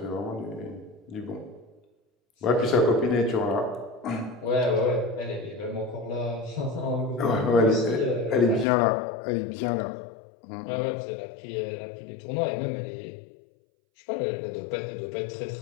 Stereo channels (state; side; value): drops out; right; at 8.7 s